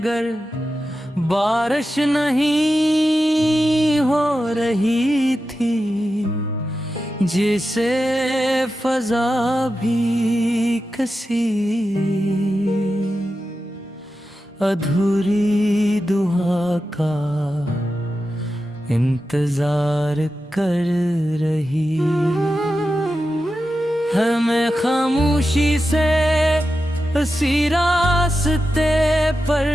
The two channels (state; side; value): normal; both; correlation 0.91